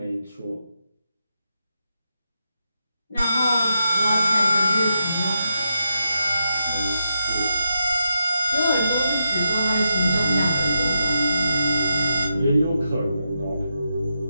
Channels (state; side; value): inverted; both; correlation -0.86